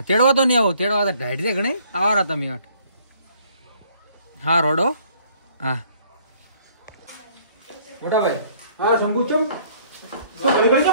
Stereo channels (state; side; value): inverted; both; correlation -0.61